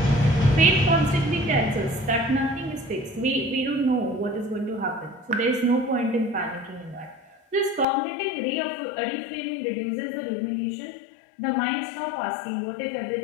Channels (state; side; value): drops out; right; at 7.9 s